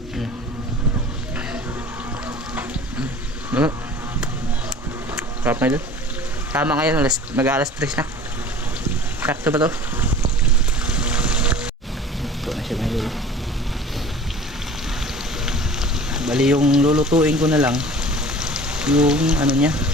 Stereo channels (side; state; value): both; normal; correlation 0.44